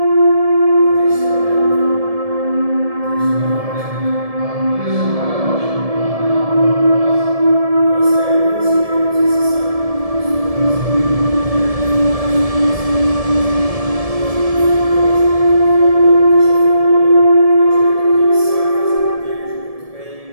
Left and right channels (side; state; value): left; late; 1.7 ms